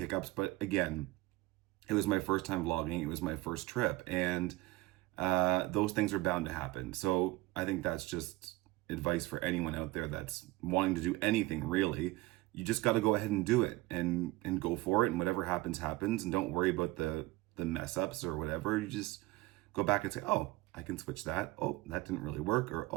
but again, it was my first time vlogging. It was my first trip, and those things are bound to happen. So I think that's just advice for anyone out there that's wanting to do anything, really. You just got to go ahead and do it and go for it, and whatever happens, happens, and don't worry about the mess ups or whatever. You just go back and say, oh, I can switch that. Oh, that didn't really work. Or,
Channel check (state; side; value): quieter; left; 19.8 dB